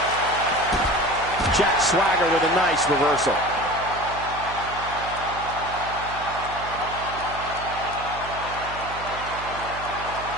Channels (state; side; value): noise; right; hum, 13 dB below the sound